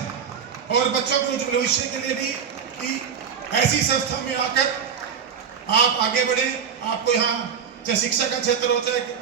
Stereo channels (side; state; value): left; quieter; 7.3 dB